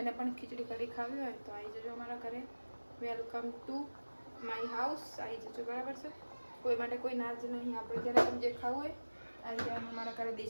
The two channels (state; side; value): inverted; both; correlation -1.00